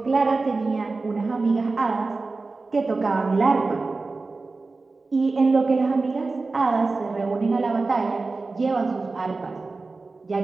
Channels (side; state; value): left; quieter; 3.7 dB